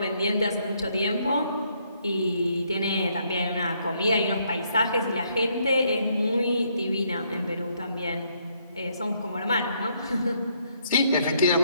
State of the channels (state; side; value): inverted; both; correlation -0.71